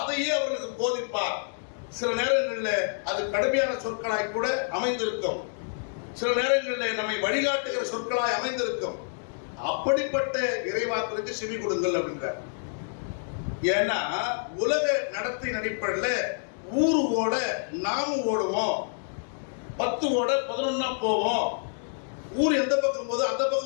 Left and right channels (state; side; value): silent; right; digital silence